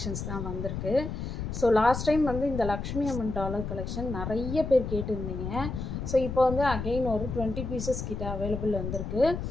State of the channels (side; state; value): left; noise; rumble, 5 dB below the sound